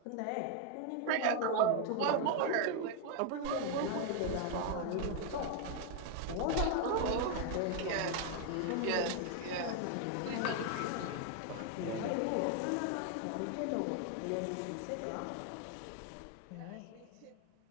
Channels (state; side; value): different; both; correlation 0.00